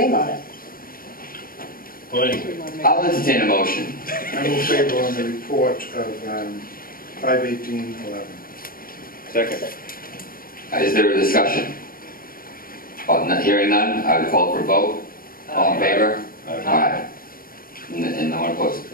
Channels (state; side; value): late; right; 0.42 ms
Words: on it. Well, anyway. I'll entertain a motion. I will favor on the report of 51811. Second. Is there a discussion? Hearing none, I would call for a vote. All in favor? Aye. And no one opposed.